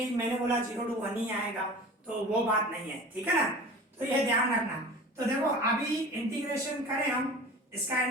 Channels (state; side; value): normal; both; correlation 0.39